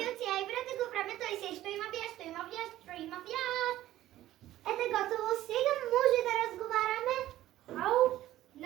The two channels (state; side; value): quieter; left; 14.3 dB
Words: Ай, брате, го време той се, што има бяс. Ете готово, сега може да разговараме. Ау,